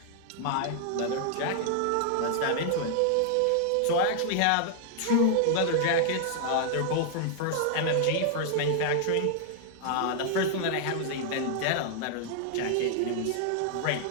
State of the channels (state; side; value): different; both; correlation 0.00